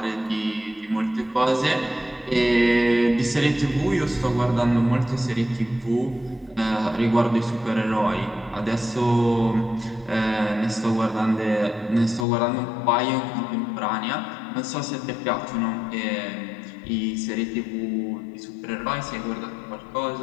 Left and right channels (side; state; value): right; drops out; at 12.2 s